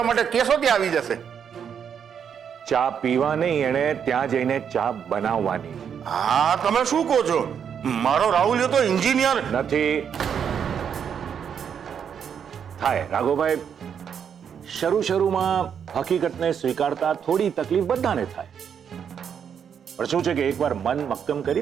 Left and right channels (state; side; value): quieter; left; 7.8 dB